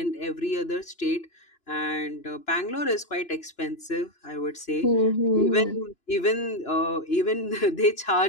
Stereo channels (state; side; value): late; right; 2.9 ms